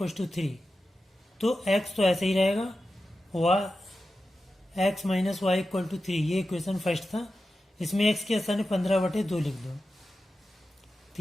to 3, तो x तो ऐसे ही रहेगा। x minus Y equal to 3, ये इक्वेशन फर्स्ट था। इसमें x के स्थान 15/2 लिख दो,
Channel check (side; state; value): both; normal; correlation 0.92